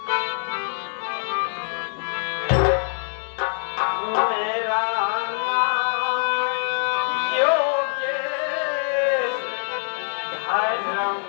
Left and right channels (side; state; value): right; silent; 63 dB below the other